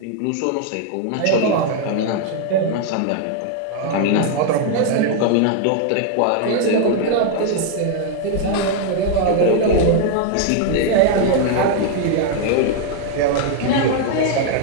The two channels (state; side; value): different; both; correlation 0.00